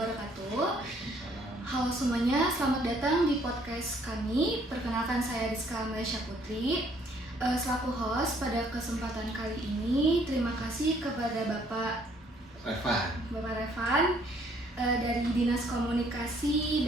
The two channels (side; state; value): both; normal; correlation 0.64